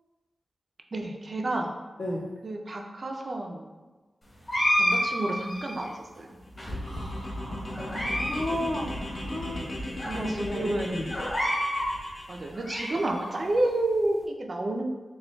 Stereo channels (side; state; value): both; normal; correlation 0.92